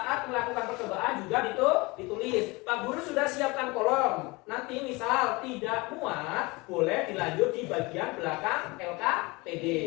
melakukan percobaan juga ditulis. Pak Guru sudah siapkan kolom. Nanti misal tidak muat boleh dilanjut di bagian belakang LKPD.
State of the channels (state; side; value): quieter; right; 24.7 dB